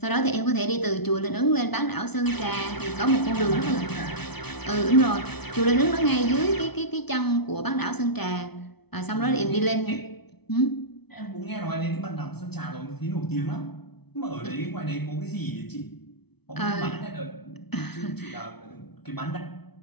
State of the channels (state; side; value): late; right; 0.98 ms